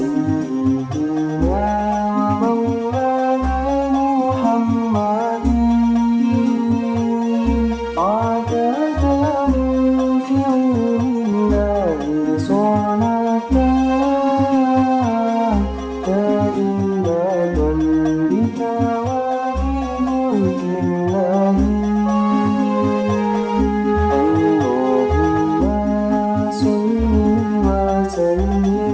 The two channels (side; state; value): both; identical; correlation 1.00